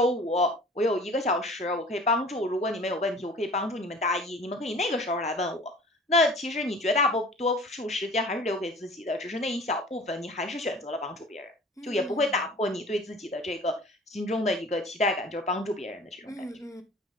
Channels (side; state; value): both; normal; correlation 0.45